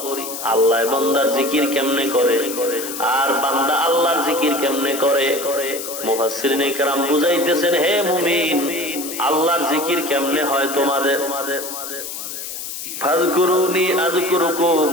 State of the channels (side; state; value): left; noise; hiss, 8 dB below the sound